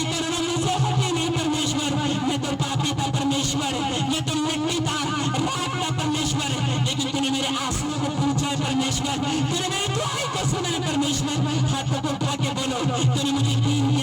करुणा मुझसे हटी नहीं परमेश्वर। मैं तो पापी था परमेश्वर, मैं तो मिट्टी था, राख था परमेश्वर, लेकिन तूने मेरे आंसुओं को पूछा है परमेश्वर, तूने मेरी दुआई को सुना है परमेश्वर। हाथों को उठा के बोलो, तूने मुझे दीन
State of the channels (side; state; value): both; identical; correlation 1.00